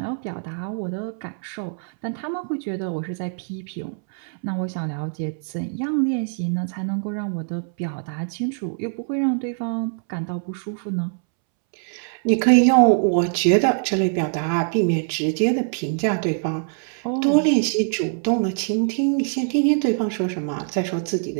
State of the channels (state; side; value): silent; left; 63 dB below the other